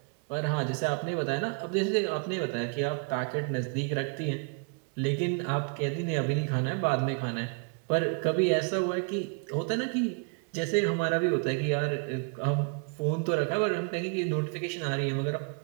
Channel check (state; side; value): quieter; left; 35.9 dB